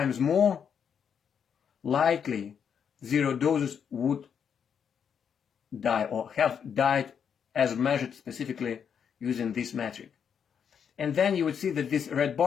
more likely 0 doses would die or have died as measured specifically using this metric. And then you would see that this red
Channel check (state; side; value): quieter; right; 7.5 dB